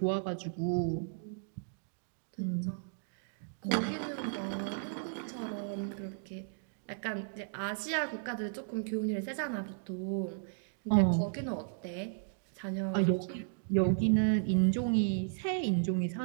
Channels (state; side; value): silent; left; digital silence